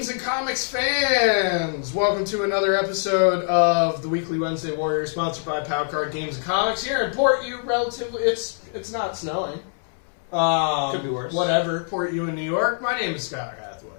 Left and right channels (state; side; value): silent; right; 63 dB below the other